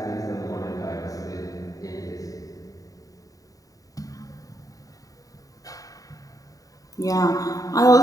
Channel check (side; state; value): right; late; 0.17 ms